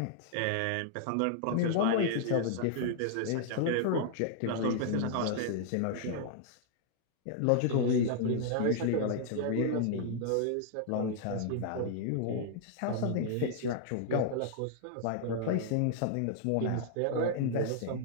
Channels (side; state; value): both; different; correlation -0.01